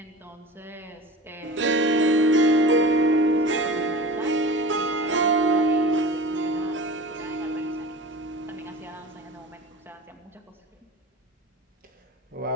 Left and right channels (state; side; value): normal; both; correlation 0.36